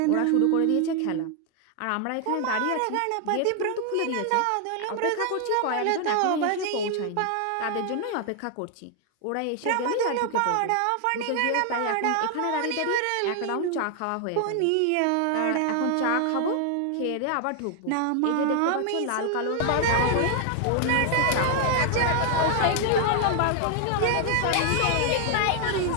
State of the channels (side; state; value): both; different; correlation 0.00